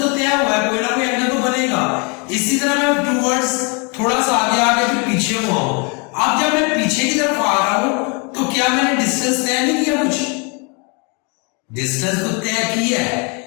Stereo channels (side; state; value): right; quieter; 33.4 dB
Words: तय हुआ है, कोई ना कोई एंगल तो बनेगा। इसी तरह मैं टूवर्ड्स थोड़ा सा आगे फिर पीछे हुआ हूं। अब जब मैं पीछे की तरफ आ रहा हूं तो क्या मैंने डिस्टेंस तय नहीं किया, कुछ डिस्टेंस तो तय किया है